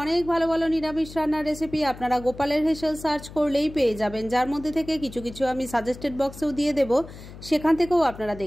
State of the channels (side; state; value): left; noise; hum, 16 dB below the sound